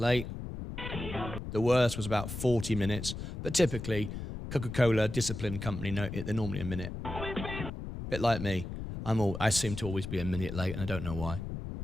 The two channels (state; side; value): noise; left; rumble, 7 dB below the sound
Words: The worst was about 40 minutes, but typically Coca-Cola, disciplined company, they're normally a minute. Bit like me. I seem to always be a minute late, and I don't know why.